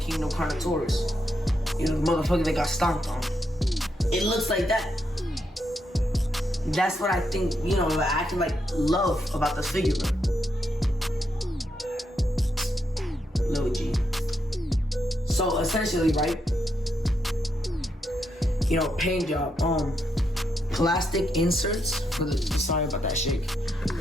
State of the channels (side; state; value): both; normal; correlation 0.81